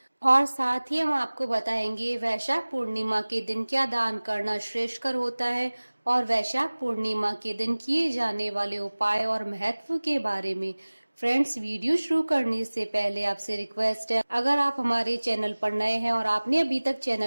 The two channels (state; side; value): inverted; both; correlation -1.00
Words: और साथ ही हम आपको बताएंगे वैशाख पूर्णिमा के दिन क्या दान करना श्रेष्ठकर होता है, और वैशाख पूर्णिमा के दिन किए जाने वाले उपाय और महत्व के बारे में। फ्रेंड्स, वीडियो शुरू करने से पहले आपसे रिक्वेस्ट है, अगर आप हमारे चैनल पर नए हैं और आपने अभी तक